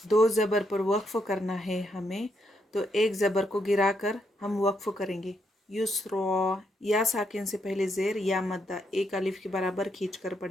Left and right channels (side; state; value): both; normal; correlation 0.78